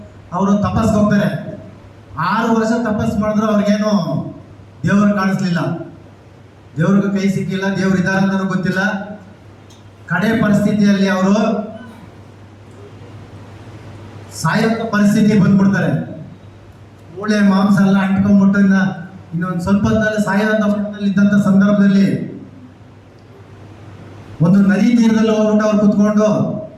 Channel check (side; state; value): both; identical; correlation 1.00